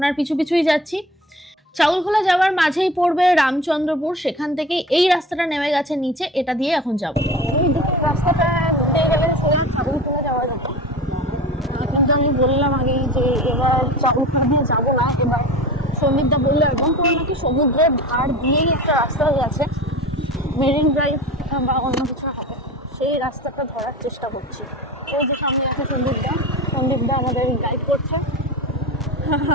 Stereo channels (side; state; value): both; normal; correlation 0.35